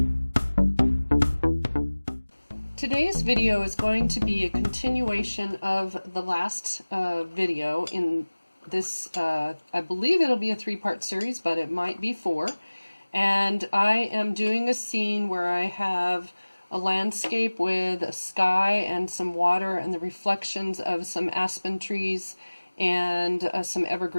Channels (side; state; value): both; inverted; correlation -1.00